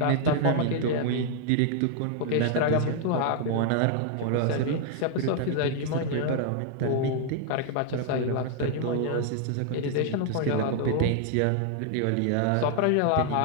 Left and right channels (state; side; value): different; both; correlation 0.00